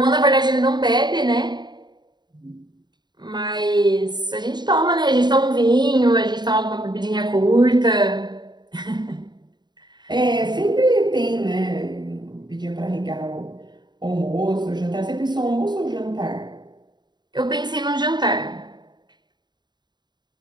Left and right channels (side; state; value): left; late; 0.21 ms